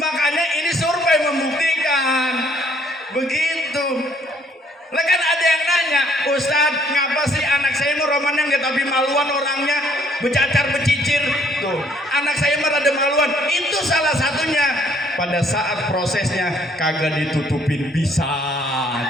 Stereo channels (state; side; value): normal; both; correlation 0.64